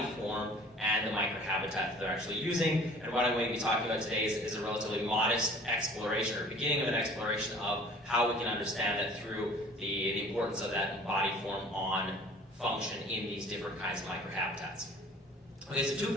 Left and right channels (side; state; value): both; normal; correlation 0.49